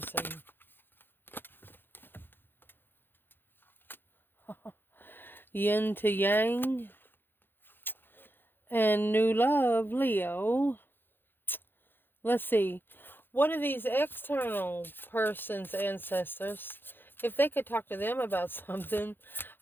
Yin to yang. And new love, Leo. Let's see. What are these external person's ancestors? If they could talk to them about something,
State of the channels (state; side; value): late; right; 0.099 ms